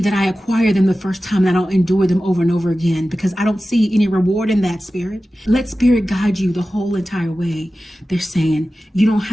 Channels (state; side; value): normal; both; correlation 0.95